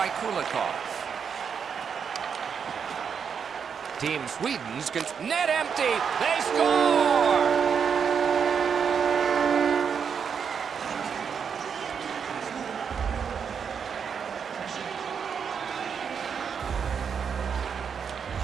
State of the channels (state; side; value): quieter; left; 6.8 dB